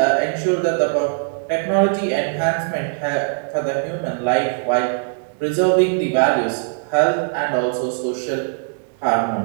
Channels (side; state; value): left; silent; digital silence